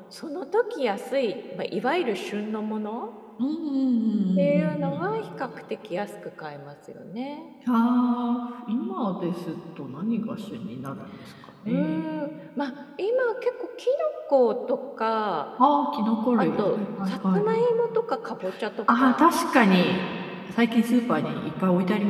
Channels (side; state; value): both; identical; correlation 1.00